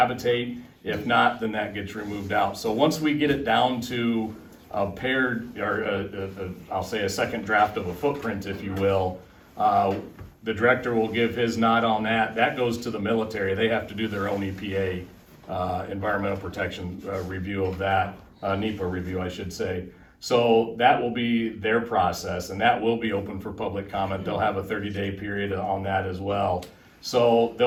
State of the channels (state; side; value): identical; both; correlation 1.00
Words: If not, then that gets removed out. So once we get it down to a paired, or I'll say a second draft of a footprint, if you will, the director will give his nod on that. That goes to the military. They have to do their own EPA, environmental protection review of that, NEPA review, I should say. So that will be their process, and that will be open for public comment. They'll have a 30-day period on that as well. So